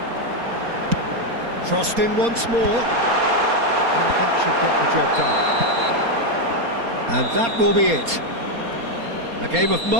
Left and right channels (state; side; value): late; left; 4.2 ms